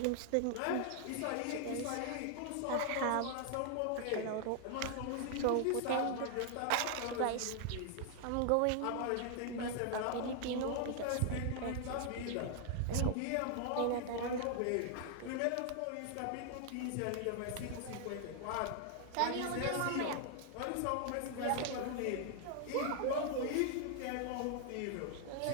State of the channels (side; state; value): both; different; correlation 0.00